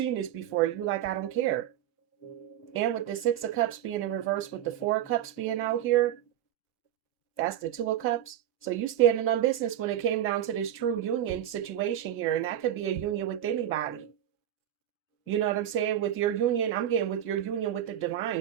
this before. You like, I don't care. And with the Six of Cups being in reverse with the Four of Cups being out here, that's the Two of Cups. So you standing on business when it came down to this true union situation here. And that could be a union with anybody. You know what I'm saying? With your union, I'm getting with your union with the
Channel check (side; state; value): left; quieter; 11.2 dB